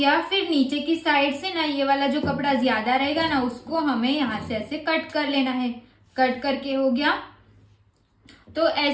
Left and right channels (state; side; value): identical; both; correlation 1.00